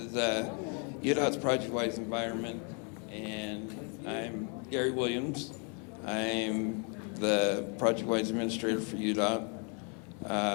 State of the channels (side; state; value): right; quieter; 37.7 dB